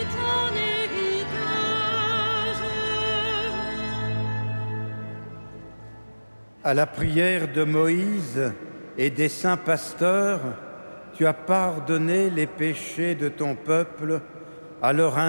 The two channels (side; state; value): both; inverted; correlation -1.00